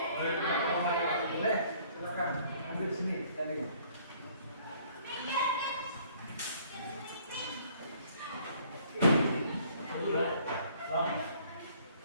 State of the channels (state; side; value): inverted; both; correlation -0.59